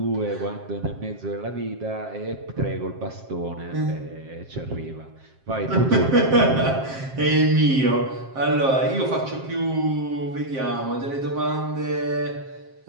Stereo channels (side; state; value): left; late; 7.5 ms